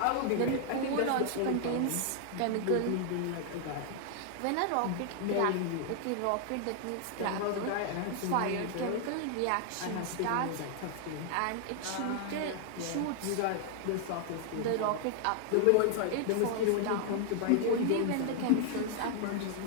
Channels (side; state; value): both; different; correlation 0.00